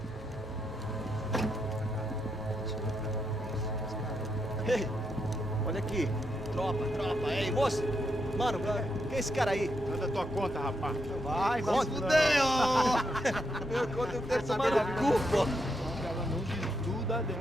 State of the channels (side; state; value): both; normal; correlation 0.81